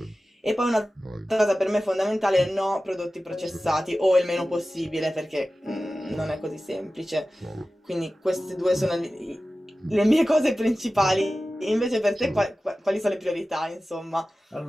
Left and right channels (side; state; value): both; normal; correlation 0.95